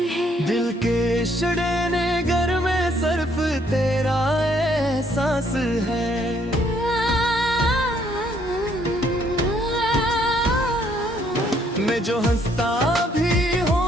है, दिल के शड़ेने घर में सिर्फ तेरा एहसास है। मैं जो हंसता भी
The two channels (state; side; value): normal; both; correlation 0.67